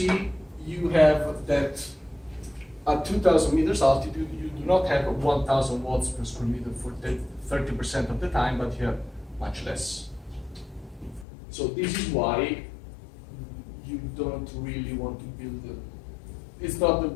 you have that at 2,000 meters altitude, you do not have 1,000 watts per square meter for 30% of the time, but you have much less. So this is why you don't really want to build it's not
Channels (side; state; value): right; drops out; at 11.2 s